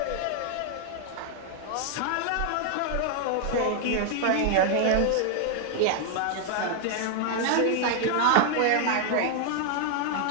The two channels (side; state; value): both; different; correlation 0.00